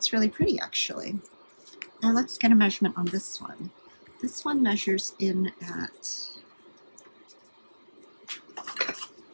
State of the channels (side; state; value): both; inverted; correlation -1.00